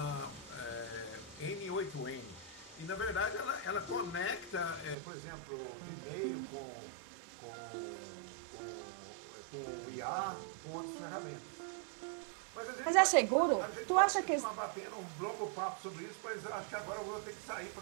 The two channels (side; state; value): left; drops out; at 5.0 s